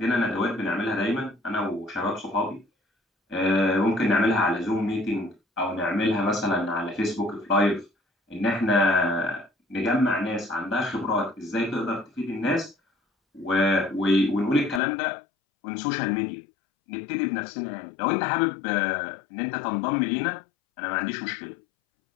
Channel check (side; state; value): right; drops out; at 14.8 s